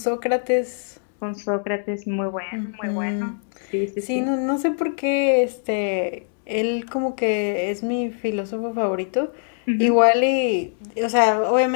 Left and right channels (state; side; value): silent; right; digital silence